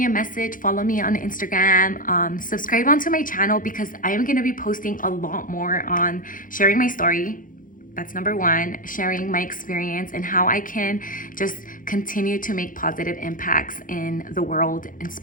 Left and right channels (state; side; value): late; right; 0.39 ms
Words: a message, follow me on Instagram, subscribe onto my channel, because I am going to be posting a lot more on sharing my story. That's number one, sharing my experience and how I can just continue to make positive impacts in the world,